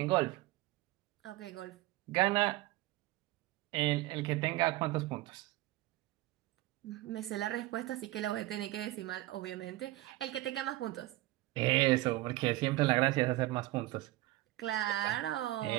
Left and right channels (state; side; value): quieter; left; 18.0 dB